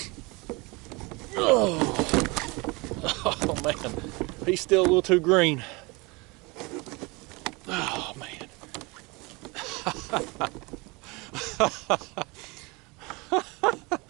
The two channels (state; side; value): quieter; left; 26.2 dB